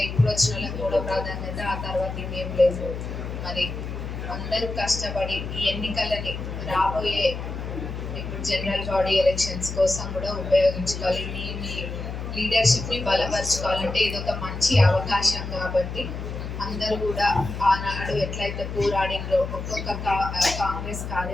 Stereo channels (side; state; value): left; noise; hum, 6 dB below the sound